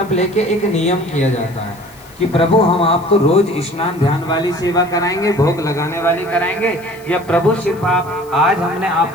लेके एक नियम किया जाता है कि प्रभु हम आपको रोज स्नान ध्यान वाली सेवा कराएंगे, भोग लगाने वाली कराएंगे, या प्रभु सिर्फ आप आज हमने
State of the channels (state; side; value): noise; left; hiss, 25 dB below the sound